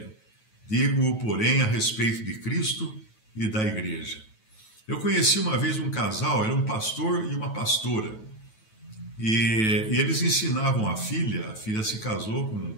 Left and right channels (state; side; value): late; right; 9.2 ms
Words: digo, porém, a respeito de Cristo e da igreja. Eu conheci uma vez um casal, era um pastor e uma pastora, e eles ensinavam a filha se casou